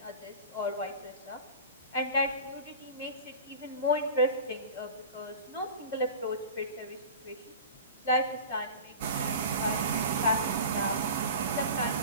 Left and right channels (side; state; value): both; inverted; correlation -0.34